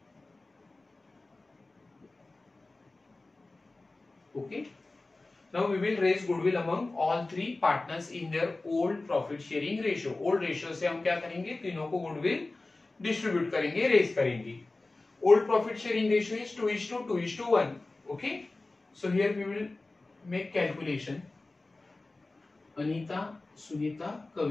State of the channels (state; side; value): quieter; right; 3.2 dB